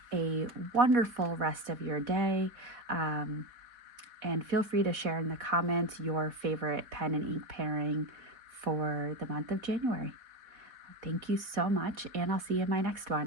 a wonderful rest of your day. And feel free to share in the comments your favorite pen and ink pairing for the month of January. Thank you so much, and I'll see you in my next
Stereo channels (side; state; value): left; late; 4.1 ms